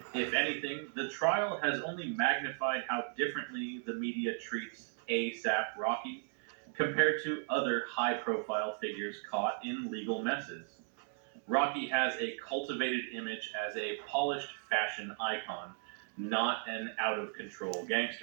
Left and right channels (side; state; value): left; silent; 54 dB below the other